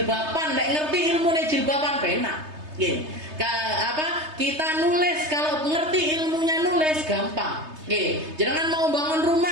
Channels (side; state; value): left; late; 3.3 ms